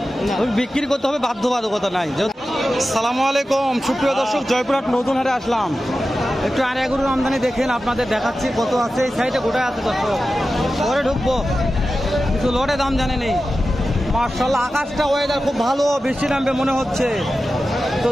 বিক্রি করতে হবে, বাধ্যবাধকতা নাই। সালামু আলাইকুম সুপ্রিয় দর্শক, জয়পুরহাট নতুন হাটে আসলাম। একটু আর এগুলোর আমদানি দেখেন, আপনাদের দেখাচ্ছি কত আছে। এই সাইডে গোটায় আছে দর্শক, পরে ঢুকবো। কিছু লটে দাম জানে নেই। মাশাআল্লাহ, আকাশটা ওয়েদার খুব ভালো, বৃষ্টি নামবে মনে হচ্ছে। তো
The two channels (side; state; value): both; normal; correlation 0.93